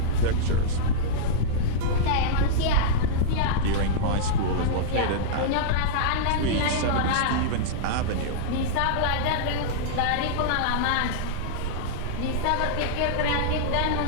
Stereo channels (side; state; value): both; different; correlation -0.03